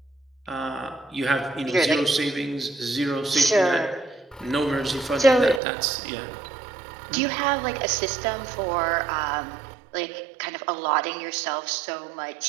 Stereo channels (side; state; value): left; drops out; at 5.6 s